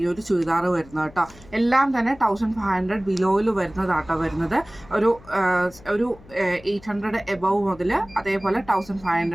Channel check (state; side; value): noise; left; hum, 23 dB below the sound